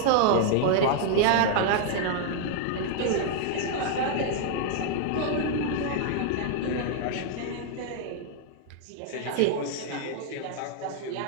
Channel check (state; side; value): different; both; correlation 0.00